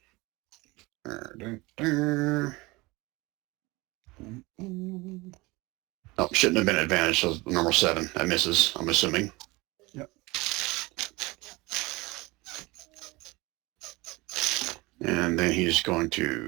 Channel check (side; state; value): left; quieter; 23.0 dB